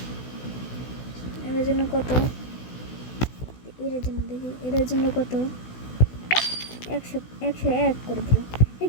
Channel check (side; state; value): right; late; 16 ms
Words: এর জন্য কত? এর জন্য দেখি এর জন্য কত? 101 করে দিলাম।